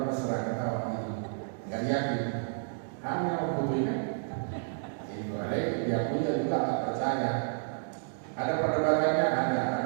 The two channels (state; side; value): silent; left; digital silence